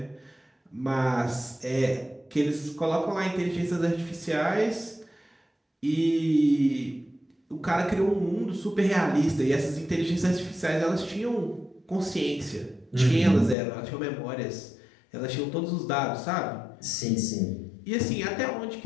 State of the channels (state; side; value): drops out; right; at 13.6 s